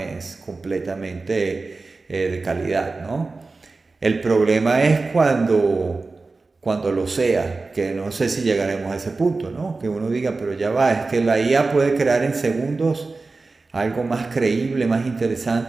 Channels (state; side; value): quieter; left; 3.8 dB